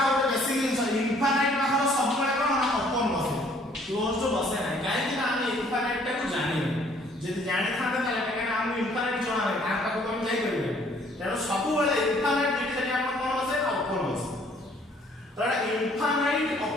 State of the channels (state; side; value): normal; both; correlation 0.60